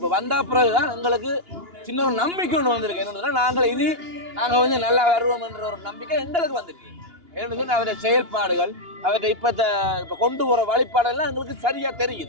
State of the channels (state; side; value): late; left; 2.9 ms